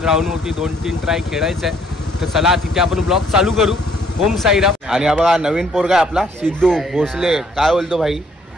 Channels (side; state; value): both; normal; correlation 0.64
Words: ग्राउंडवरती 2-3 ट्राय खेळायचं आहे, तर चला तिथे आपण ब्लॉग चालू करू। ओम साईराम। आणि हा बघा नवीन पोरगा आपला सिद्धू भोसले, काय बोलतो भाई?